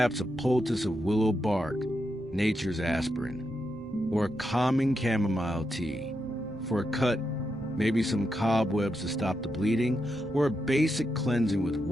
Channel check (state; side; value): normal; both; correlation 0.84